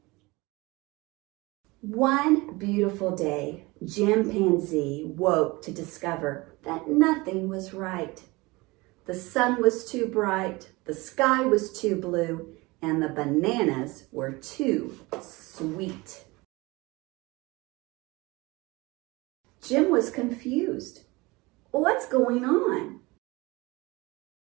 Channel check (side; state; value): left; quieter; 23.2 dB